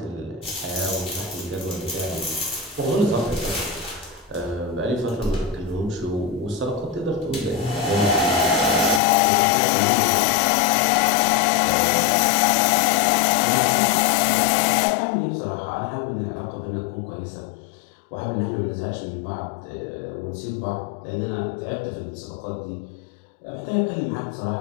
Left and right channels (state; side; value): drops out; right; at 9.0 s